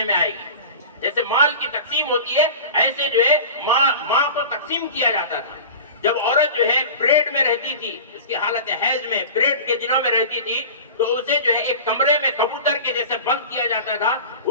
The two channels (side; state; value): both; inverted; correlation -0.34